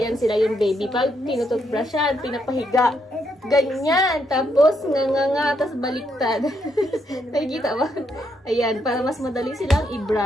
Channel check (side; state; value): both; normal; correlation 0.77